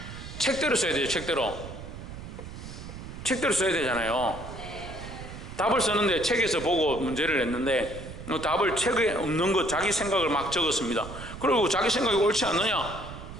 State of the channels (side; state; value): right; noise; rumble, 11 dB below the sound